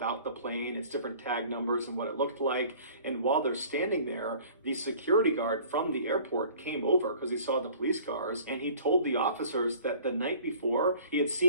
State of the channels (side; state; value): both; inverted; correlation -0.48